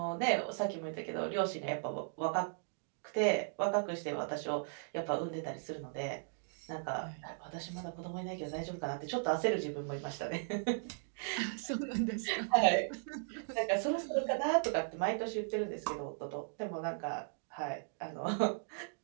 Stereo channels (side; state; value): left; silent; digital silence